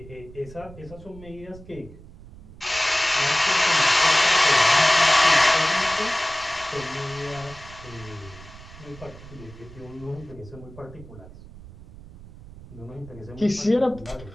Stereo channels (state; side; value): noise; right; rumble, 18 dB below the sound